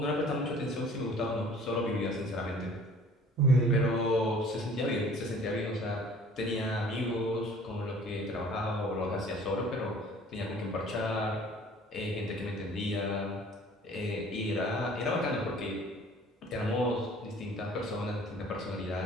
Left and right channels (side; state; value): both; normal; correlation 0.51